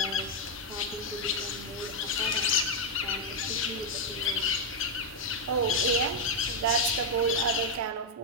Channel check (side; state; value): both; normal; correlation 0.01